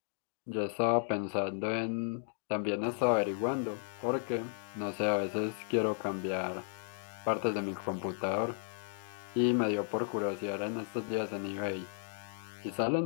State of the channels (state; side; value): silent; right; 55 dB below the other